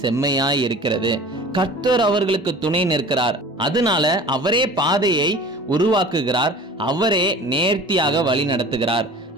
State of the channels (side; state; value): both; normal; correlation 0.42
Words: செம்மையாய் இருக்கிறது. கர்த்தர் அவர்களுக்கு துணை நிற்கிறார். அதனால அவரே பாதையை உருவாக்குகிறார். அவரே நேர்த்தியாக வழி நடத்துகிறார்.